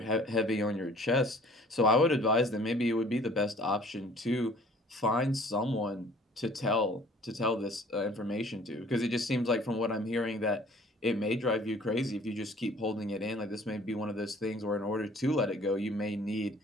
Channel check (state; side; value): normal; both; correlation 0.53